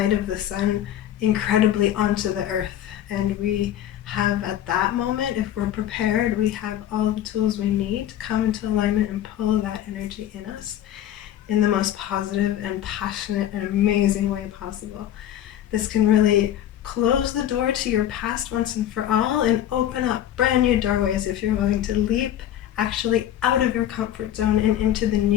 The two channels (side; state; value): right; quieter; 11.5 dB